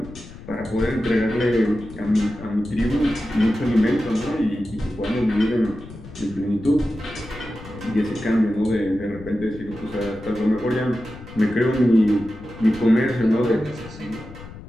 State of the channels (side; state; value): left; noise; rumble, 16 dB below the sound